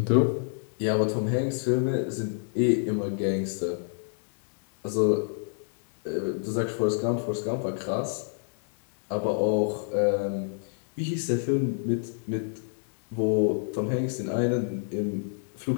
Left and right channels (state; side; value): silent; right; digital silence